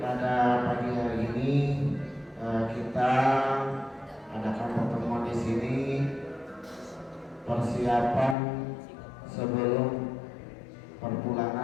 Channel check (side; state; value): right; drops out; at 8.3 s